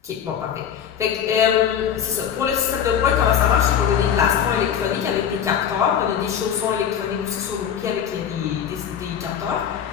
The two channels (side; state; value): right; quieter; 8.7 dB